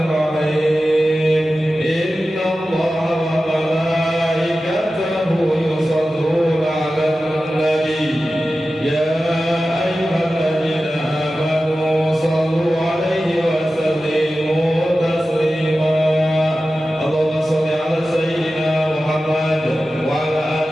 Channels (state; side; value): normal; both; correlation 0.94